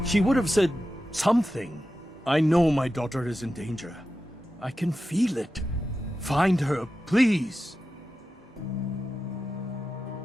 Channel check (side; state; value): both; normal; correlation 0.92